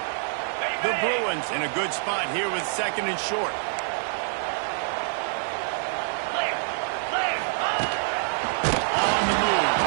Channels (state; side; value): silent; left; digital silence